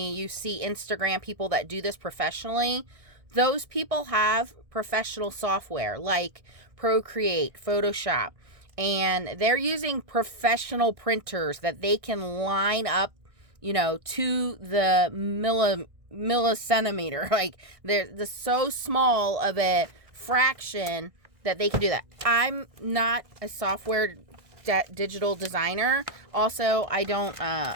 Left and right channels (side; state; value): left; late; 1.6 ms